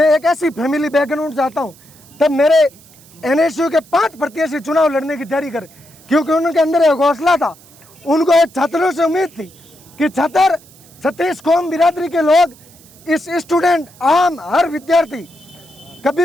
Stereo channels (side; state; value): right; noise; hiss, 25 dB below the sound